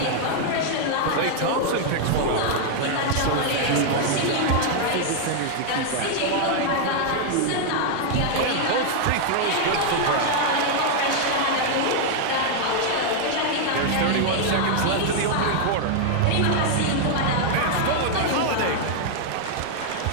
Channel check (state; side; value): different; both; correlation 0.00